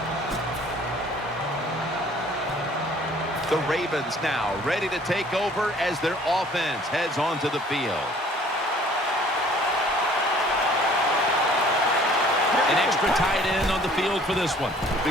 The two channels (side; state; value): both; normal; correlation 0.54